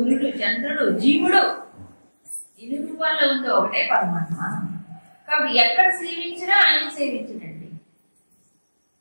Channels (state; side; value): inverted; both; correlation -1.00